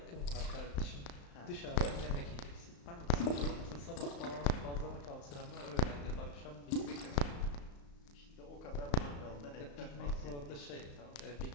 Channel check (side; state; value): right; late; 35 ms